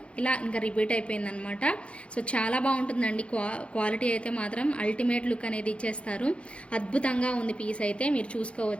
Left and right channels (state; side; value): late; right; 0.060 ms